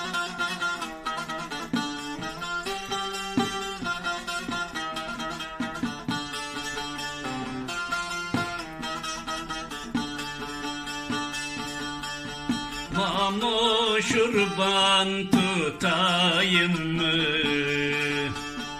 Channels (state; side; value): identical; both; correlation 1.00